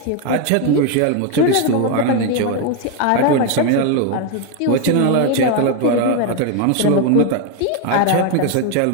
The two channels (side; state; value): both; different; correlation 0.01